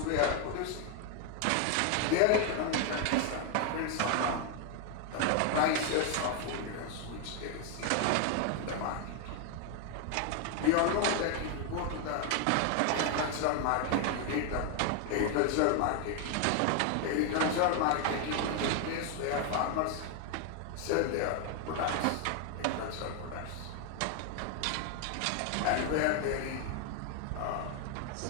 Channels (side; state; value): both; different; correlation 0.01